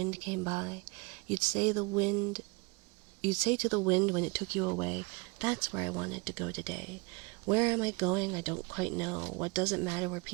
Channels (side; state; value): left; quieter; 28.9 dB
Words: came by. You'd say to the wind when it took you away, that's where I wanted to go today. Where am I going? I don't quite know. What does it matter where